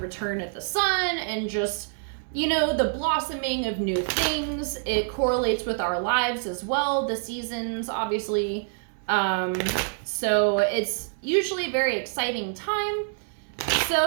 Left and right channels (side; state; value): left; silent; digital silence